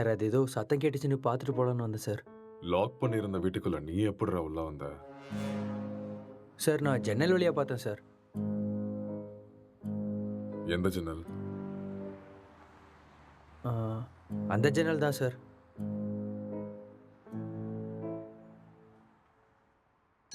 அது ஏதோ சத்தம் கேட்டுச்சுன்னு பார்த்துட்டு போகலான்னு வந்தேன் சார். லாக் பண்ணியிருந்த வீட்டுக்குள்ள நீ எப்படிடா உள்ள வந்த? சார் நான் ஜன்னல் வழியாக பார்த்தேன் சார். எந்த ஜன்னல்? ஆ, அந்த ஜன்னல் தான் சார்.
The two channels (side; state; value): both; identical; correlation 1.00